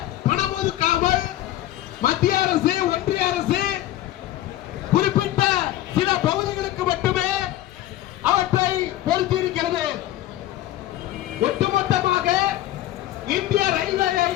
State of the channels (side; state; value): right; quieter; 14.2 dB